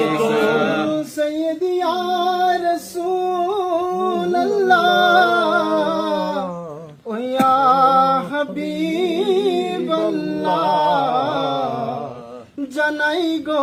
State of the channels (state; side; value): identical; both; correlation 1.00